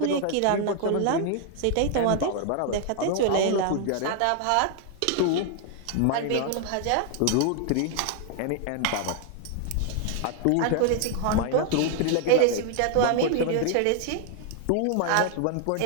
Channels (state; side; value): different; both; correlation 0.00